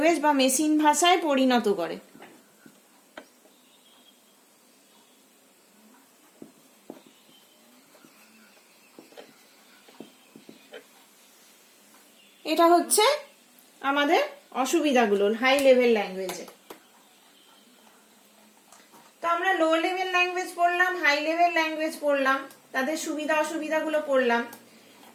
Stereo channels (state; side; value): identical; both; correlation 1.00